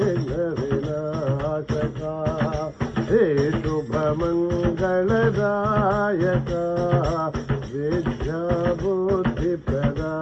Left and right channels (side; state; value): both; identical; correlation 1.00